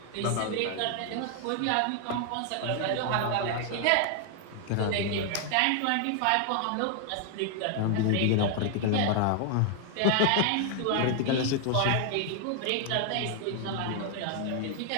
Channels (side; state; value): both; different; correlation 0.00